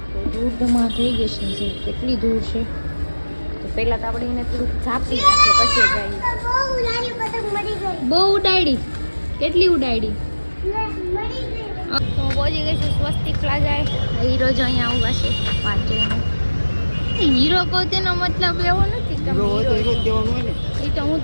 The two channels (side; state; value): both; inverted; correlation -1.00